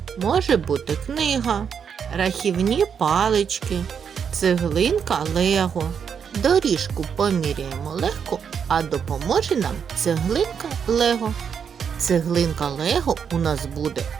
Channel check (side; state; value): left; quieter; 7.2 dB